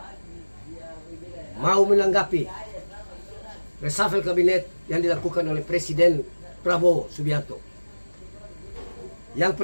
mau menanggapi reshuffle kabinet yang dilakukan oleh Presiden Prabowo Subianto. Yang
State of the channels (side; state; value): both; inverted; correlation -1.00